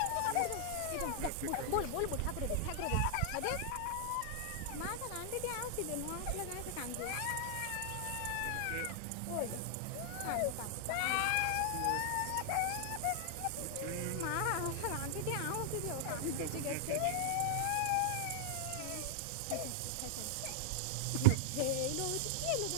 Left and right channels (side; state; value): both; different; correlation -0.01